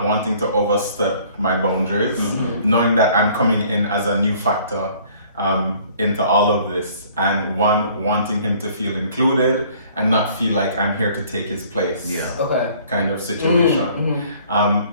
wanting to overstep my boundaries, knowing that I'm coming in as a new factor into all of this, and wanting him to feel included and not feel like I'm here to take his place. Yeah. Okay. Kind of situation.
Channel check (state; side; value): inverted; both; correlation -0.56